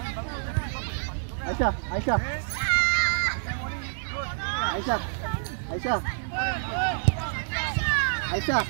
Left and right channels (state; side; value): silent; left; digital silence